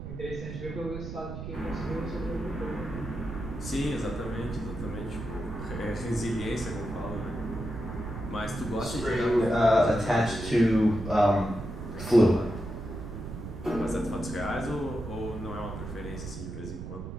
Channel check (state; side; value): noise; right; rumble, 8 dB below the sound